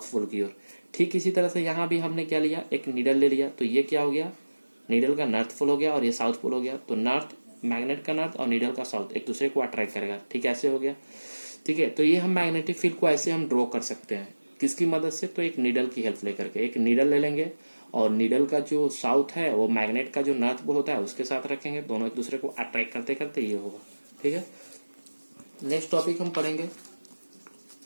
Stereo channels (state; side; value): inverted; both; correlation -1.00